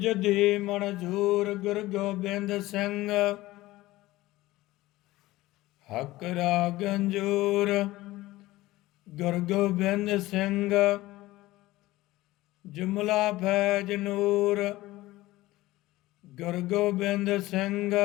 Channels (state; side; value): quieter; right; 17.9 dB